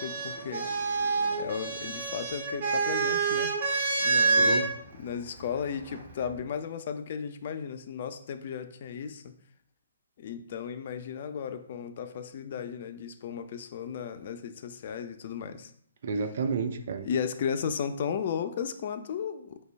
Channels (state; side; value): inverted; both; correlation -0.63